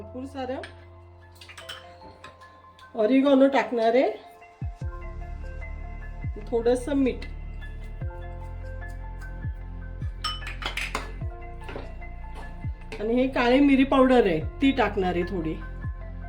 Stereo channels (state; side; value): identical; both; correlation 1.00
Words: सारं, ऑरिगॅनो टाकणार आहे, थोडंसं मीठ. आणि हे काळी मिरी पावडर आहे ती टाकणार आहे थोडी.